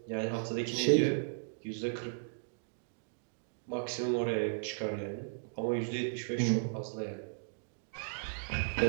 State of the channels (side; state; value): left; silent; digital silence